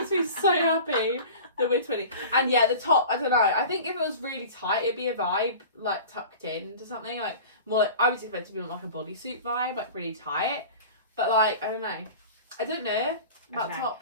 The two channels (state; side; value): inverted; both; correlation -0.37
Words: me so happy that we're twinning. And yeah, the top, I don't know. I think if it was really tight, it'd be a vibe, like tucked into something. Like, more like, I was expecting to be like a bodysuit vibe, like really tight. But like, I don't know. I don't know about